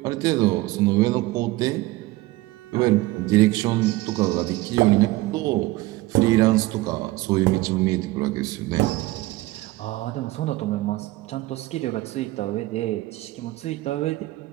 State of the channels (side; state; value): left; quieter; 19.1 dB